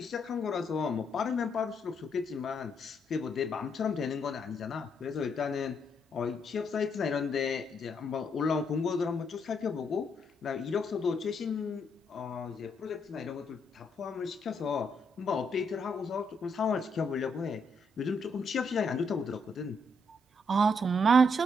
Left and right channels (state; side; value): normal; both; correlation 0.75